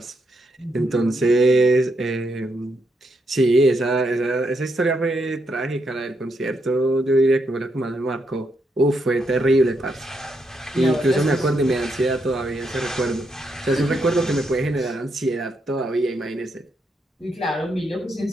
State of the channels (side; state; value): both; normal; correlation 0.80